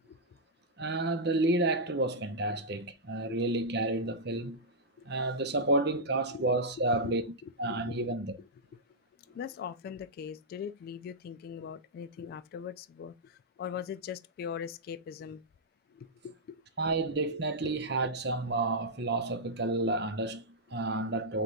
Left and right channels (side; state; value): both; normal; correlation -0.08